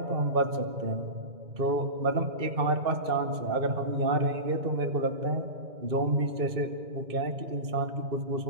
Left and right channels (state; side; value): late; left; 2.1 ms